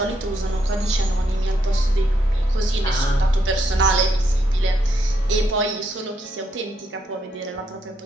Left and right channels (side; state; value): both; normal; correlation 0.77